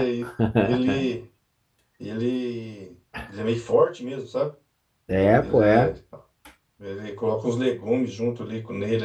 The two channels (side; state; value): both; identical; correlation 1.00